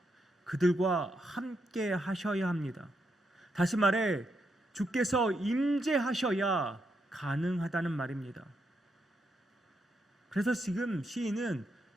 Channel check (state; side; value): normal; both; correlation 0.81